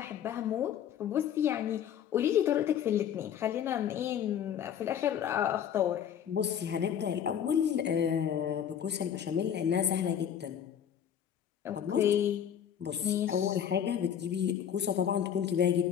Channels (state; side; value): quieter; right; 9.1 dB